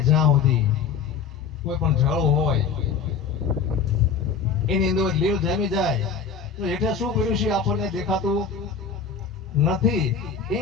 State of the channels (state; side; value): quieter; right; 6.1 dB